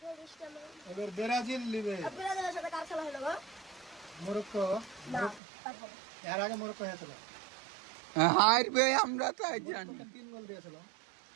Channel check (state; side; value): drops out; left; at 5.4 s